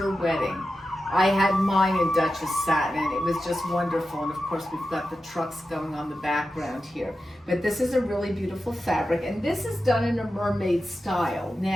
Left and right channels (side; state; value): both; normal; correlation 0.91